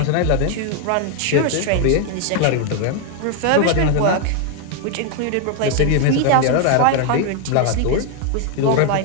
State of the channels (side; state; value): both; different; correlation 0.01